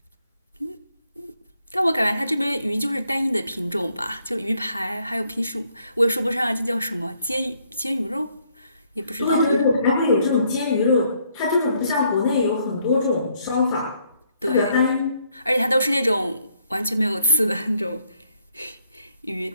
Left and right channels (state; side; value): inverted; both; correlation -0.71